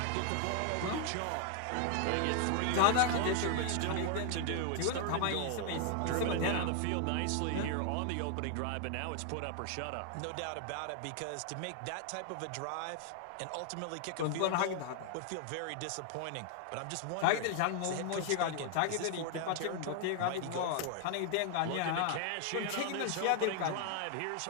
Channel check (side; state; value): both; different; correlation 0.00